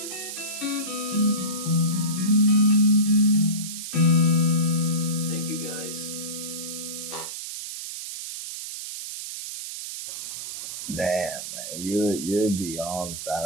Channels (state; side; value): noise; right; hiss, 8 dB below the sound